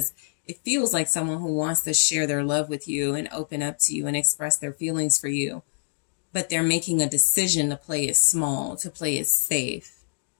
it feels like someone who wants to share their love with you and open up to you and express their feelings for you. But they're making a decision to play it small, to play it safe,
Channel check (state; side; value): silent; right; digital silence